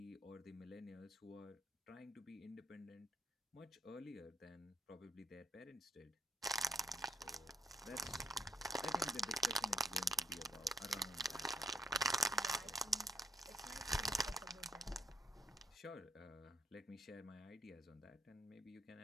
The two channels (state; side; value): normal; both; correlation 0.73